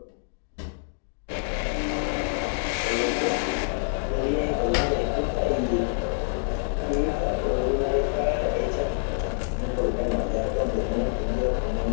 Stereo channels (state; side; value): silent; right; digital silence